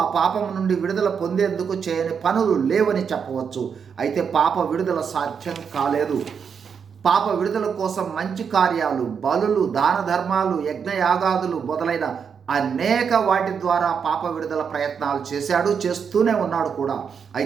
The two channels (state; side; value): quieter; left; 6.7 dB